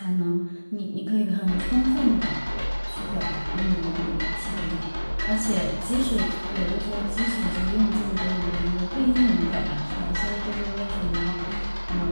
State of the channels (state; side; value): inverted; both; correlation -1.00